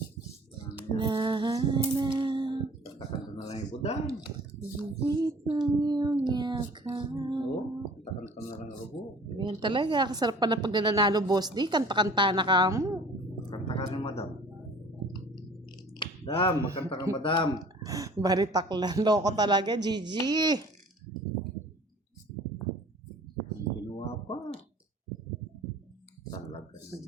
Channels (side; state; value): both; normal; correlation 0.48